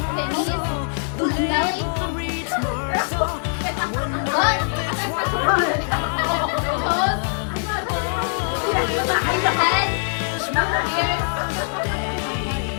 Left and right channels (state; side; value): silent; right; digital silence